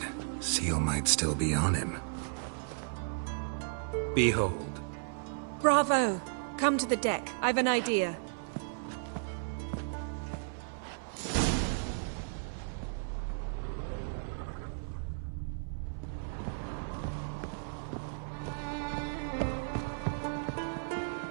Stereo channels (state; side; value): silent; left; 55 dB below the other